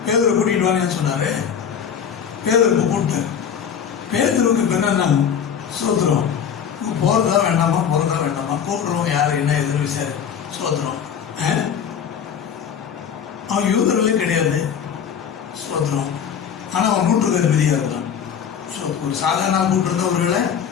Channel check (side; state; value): right; quieter; 7.9 dB